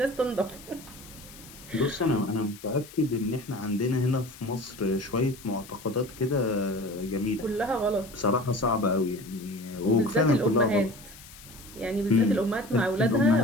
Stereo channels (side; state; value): left; noise; hiss, 19 dB below the sound